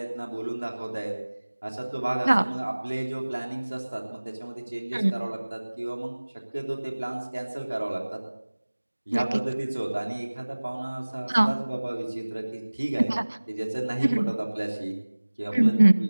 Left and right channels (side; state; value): both; inverted; correlation -1.00